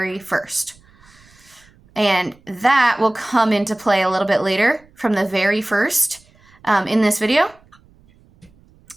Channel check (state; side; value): noise; right; rumble, 30 dB below the sound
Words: first. And that will come into play a little bit later, from the very first in this video.